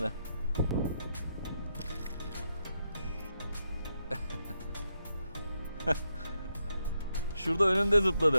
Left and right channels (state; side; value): inverted; both; correlation -0.82